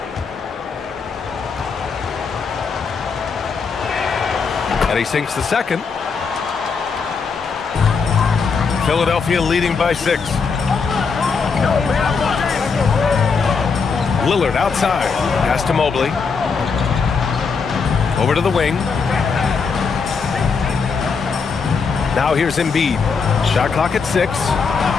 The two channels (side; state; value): right; quieter; 5.3 dB